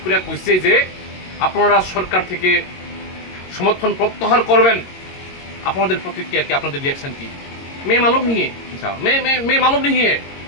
করে কইছে যে আপনারা সরকার থেকে সমর্থন প্রত্যাহার করবেন, আপনাদের প্রতিক্রিয়া কি, আপনাদের রিয়াকশন কি? मैं मालूम नहीं है, मैं मालूम नहीं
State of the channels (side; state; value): right; late; 22 ms